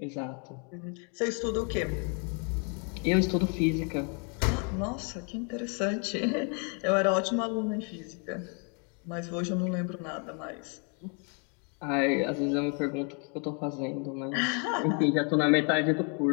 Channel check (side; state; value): right; quieter; 37.8 dB